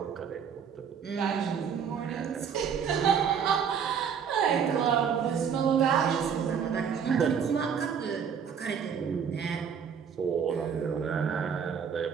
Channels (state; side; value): quieter; left; 7.2 dB